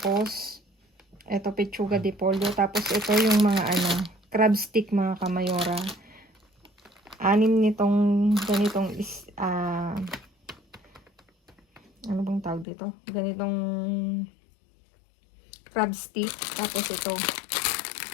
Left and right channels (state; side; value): drops out; right; at 12.7 s